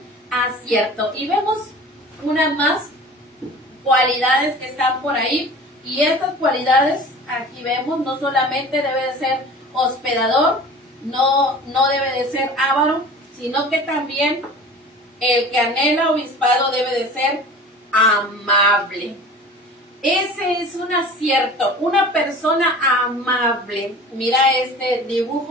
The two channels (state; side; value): normal; both; correlation 0.41